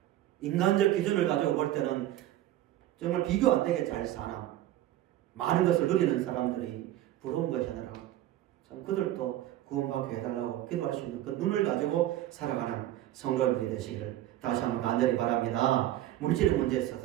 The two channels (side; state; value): left; quieter; 13.7 dB